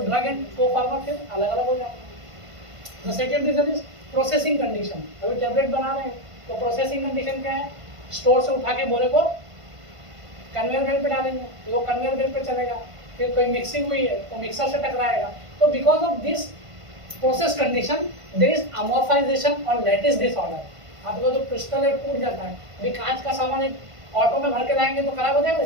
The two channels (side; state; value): left; late; 1.5 ms